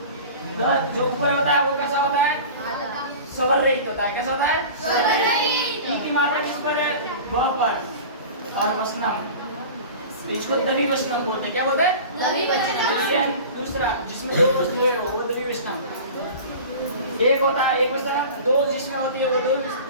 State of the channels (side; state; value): both; inverted; correlation -0.37